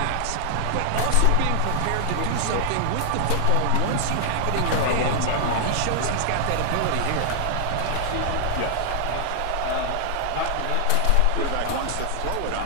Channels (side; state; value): both; different; correlation 0.00